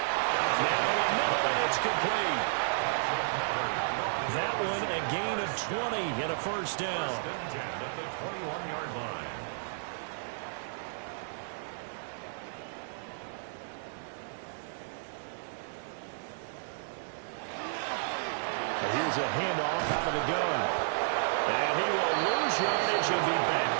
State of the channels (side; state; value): left; silent; digital silence